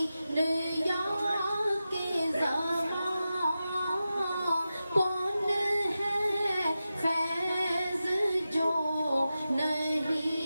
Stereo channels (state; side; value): inverted; both; correlation -0.92